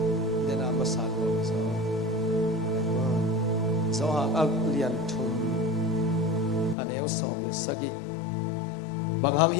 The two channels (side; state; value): right; drops out; at 6.8 s